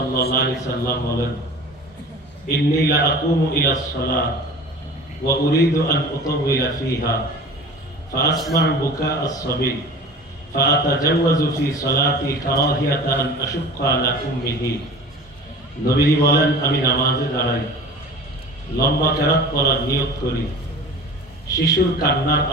আলাইহি সাল্লাম বলেন, ইন্নী লা আকুমু ইলাস সালাত ওয়া উরিদু আন উতাওয়িলা ফিহা ফাআসমা'ু বুকা আস-সাবী ফাআতাজাওয়াজু ফি সালাতি কারাহিয়াতা আন আশুক্কা আলা উম্মিহি। নবীজি বলেন, আমি নামাজে দাঁড়াই, লম্বা কেরাত পড়ার নিয়ত করি। শিশুর কান্নার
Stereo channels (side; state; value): both; normal; correlation 0.38